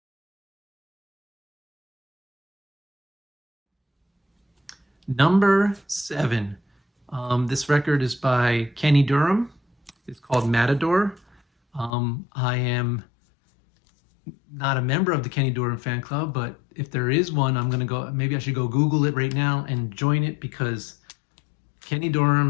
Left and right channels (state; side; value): drops out; right; at 11.9 s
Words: Number 7. This record is by Kenny Dorham. It's called Matador. I am not a member of the Kenny Dorham fan club, but if there is one, I'm gonna go, maybe I should go Google it right now and join it, because Kenny